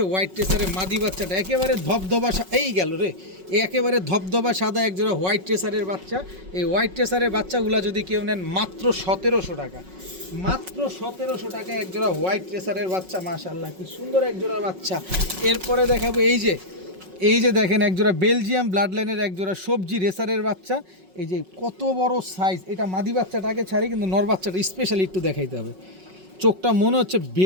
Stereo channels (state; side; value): late; left; 5.4 ms